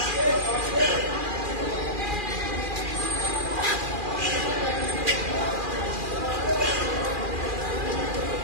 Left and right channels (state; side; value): late; left; 2.4 ms